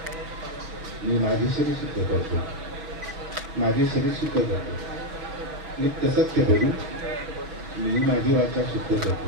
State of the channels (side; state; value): left; late; 5.9 ms